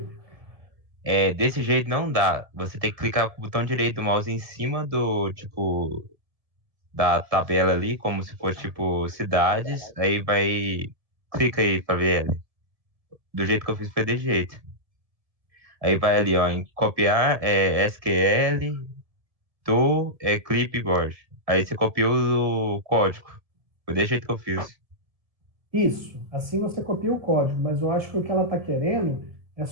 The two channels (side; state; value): left; late; 1.8 ms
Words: desse jeito não dá. Você tem que clicar com o botão direito do mouse em cima do, tipo, da tabela ali, como se fosse, tipo, cidades. Aí vai. Clica aí pra ver ela. Do jeito que eu fiz foi desse jeito. Aí vai ali, ó, em copiar SQL do clipboard. Aí você copiou o código. Foi desse jeito que eu fiz. Isso. Assim você copia o código, mas eu acho que o que ela está querendo é